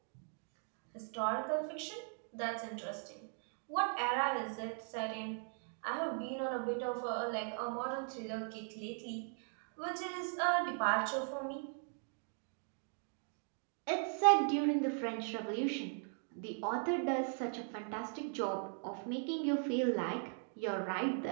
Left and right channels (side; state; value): left; silent; 52 dB below the other